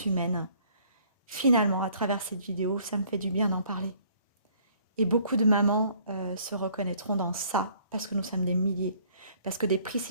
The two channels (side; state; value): both; inverted; correlation -0.59